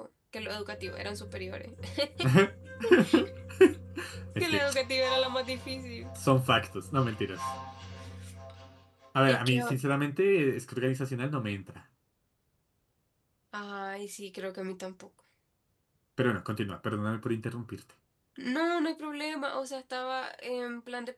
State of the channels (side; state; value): both; identical; correlation 1.00